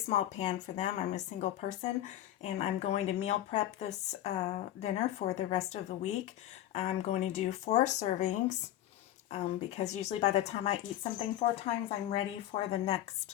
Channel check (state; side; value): quieter; right; 12.9 dB